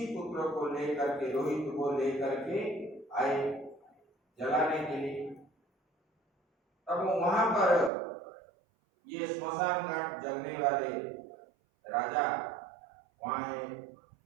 पुत्र को लेकर के, रोहित को लेकर के आए जलाने के लिए। तब वहां पर ये स्मशान घाट जलने वाले राजा वहां है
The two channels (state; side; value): drops out; left; at 7.9 s